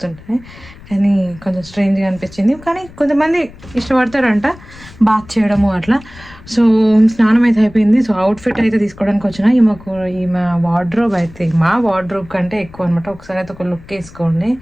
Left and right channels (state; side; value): noise; left; rumble, 21 dB below the sound